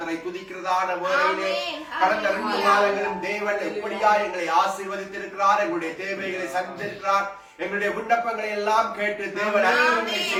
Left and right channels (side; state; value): both; identical; correlation 1.00